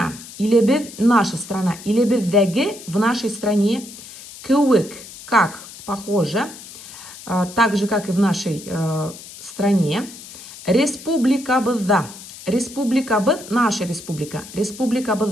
илебеҙ, наша страна, илебеҙҙәге, в нашей стране, кеүек, как, похоже, так же, как и в нашей стране, республикабыҙҙа, республикабыҙ, наша республика,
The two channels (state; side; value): noise; left; hiss, 16 dB below the sound